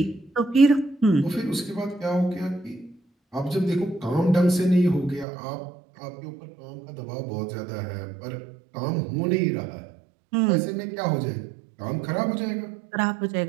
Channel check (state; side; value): drops out; left; at 5.2 s